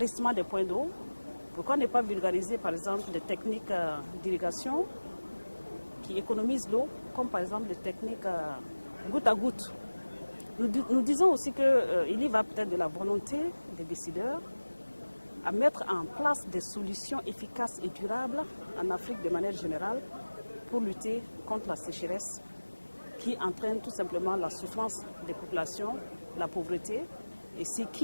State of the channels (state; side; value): inverted; both; correlation -1.00